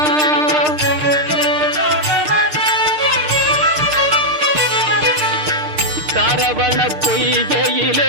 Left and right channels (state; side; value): late; left; 6.6 ms